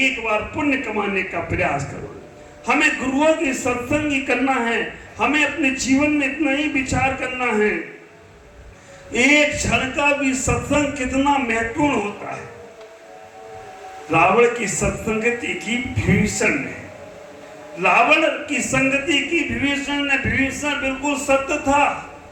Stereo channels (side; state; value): both; identical; correlation 1.00